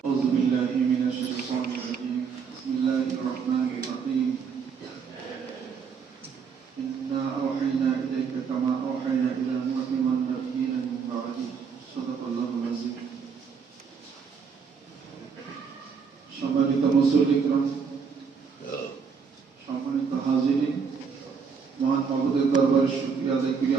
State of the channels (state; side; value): quieter; left; 6.0 dB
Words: أعوذ بالله من الشيطان الرجيم بسم الله الرحمن الرحيم إنا أوحينا إليك كما أوحينا إلى نوح والنبيين من بعده صدق الله العظيم সম্মানিত মুসল্লিকরাম সম্মানিত হাজিরিন মহান মাবুদের দরবারে শুকরিয়া আদায় করি